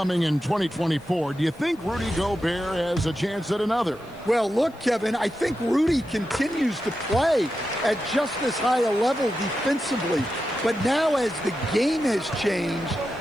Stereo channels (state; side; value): noise; left; hiss, 29 dB below the sound